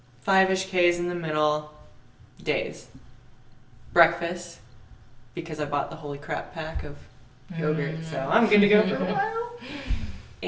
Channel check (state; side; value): identical; both; correlation 1.00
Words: 5-ish Ks in the middle days. Breakfast, because I bought the Holy Crap pack of yogurt, so I'm good to go for a while.